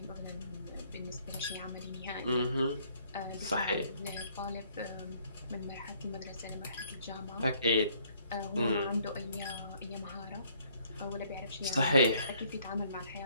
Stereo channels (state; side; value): inverted; both; correlation -0.63